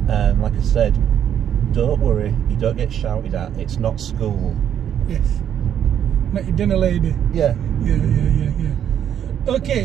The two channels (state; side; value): quieter; left; 9.4 dB